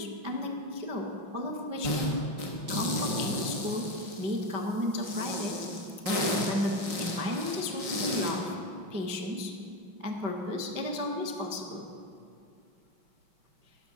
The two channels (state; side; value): late; left; 5.5 ms